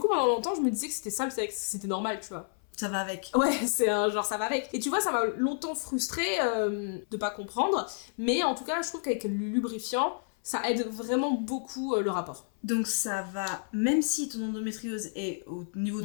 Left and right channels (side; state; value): right; silent; 58 dB below the other